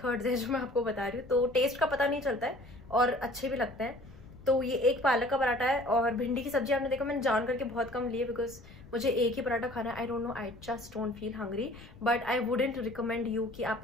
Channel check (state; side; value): noise; left; rumble, 19 dB below the sound